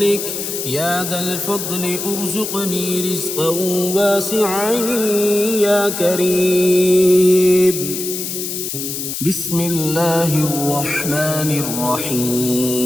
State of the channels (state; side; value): noise; left; hiss, 5 dB below the sound